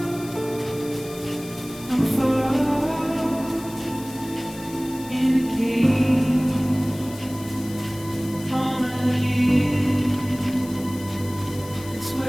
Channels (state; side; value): noise; left; hiss, 17 dB below the sound